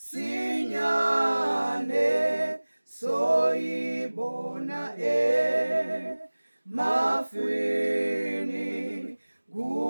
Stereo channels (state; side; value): inverted; both; correlation -1.00